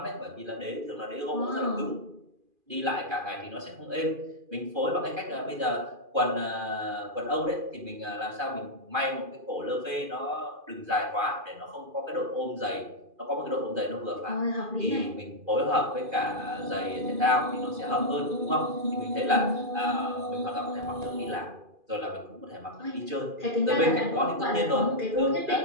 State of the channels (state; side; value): late; left; 2.4 ms